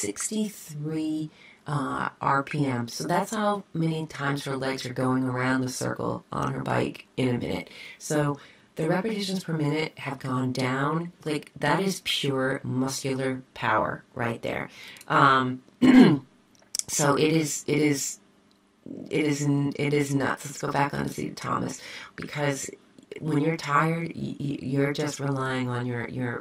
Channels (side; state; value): both; identical; correlation 1.00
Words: RPM. So that's how many times her legs are going around the circle on her bike in a minute. So the repetitions per minute have gone down. Like, that is pure muscular power right there. So it is nuts. Let's go back on to see Thomas, because when you're tired, you're just relying on